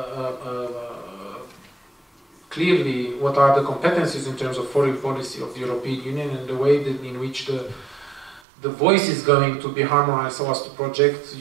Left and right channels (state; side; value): drops out; left; at 8.4 s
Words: clearly what are the competencies in terms of foreign policy of the European Union and the way that in which the voice is going to be harmonized so as to project the